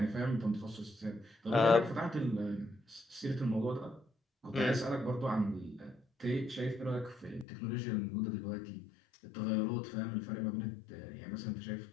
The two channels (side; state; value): right; drops out; at 7.5 s